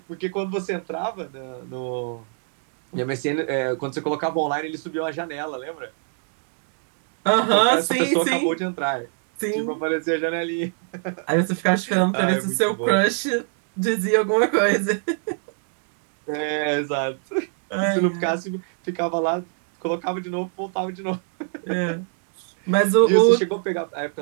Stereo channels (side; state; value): left; silent; 62 dB below the other